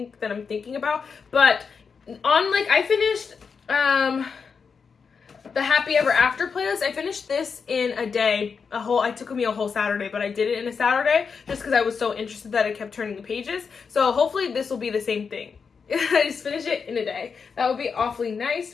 I'm thinking about. But I finished, the Happy Ever After playlist. I finished this in a day. It took me a whole Saturday, but I did it in a Saturday just because I was so interested that I kept turning the pages. So hopefully this will be the same thing. I just finished it in a day. That would be awfully nice.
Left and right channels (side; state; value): right; quieter; 5.7 dB